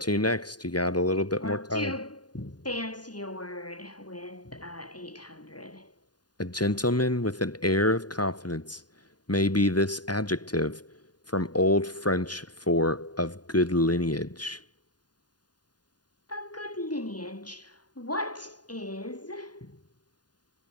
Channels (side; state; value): right; late; 0.70 ms